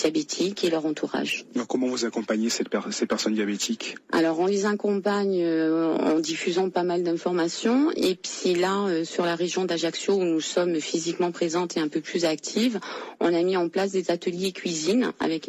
et leur entourage. Alors, comment vous accompagnez ces personnes diabétiques? Alors, on les accompagne en diffusant pas mal d'informations. Et puis là, sur la région d'Ajaccio, où nous sommes physiquement présentes et un peu plus actives, on a mis en place des ateliers cuisine avec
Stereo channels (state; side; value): identical; both; correlation 1.00